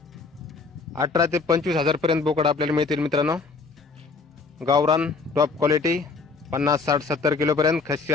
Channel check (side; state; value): right; quieter; 4.4 dB